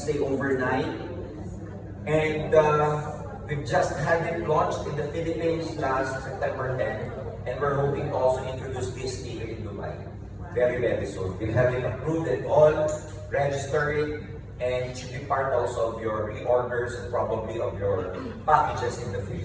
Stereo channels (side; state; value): both; identical; correlation 1.00